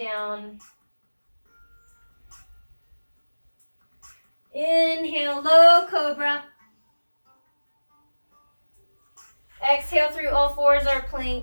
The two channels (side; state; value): both; inverted; correlation -1.00